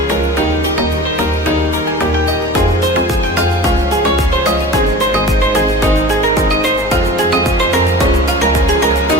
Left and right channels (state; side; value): normal; both; correlation 0.39